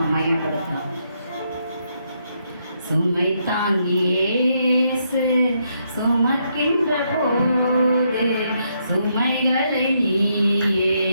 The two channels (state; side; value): inverted; both; correlation -0.77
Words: மகிமைப்படுத்தலாம். சுமை தாங்கியேசு சுமக்கின்ற போது சுமைகளை நீயே